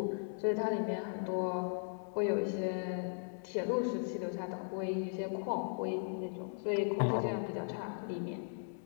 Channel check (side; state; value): right; silent; digital silence